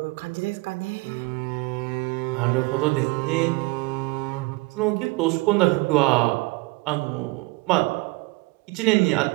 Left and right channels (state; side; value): quieter; left; 23.7 dB